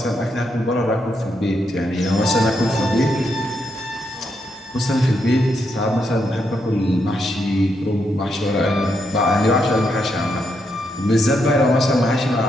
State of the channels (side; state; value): both; normal; correlation 0.79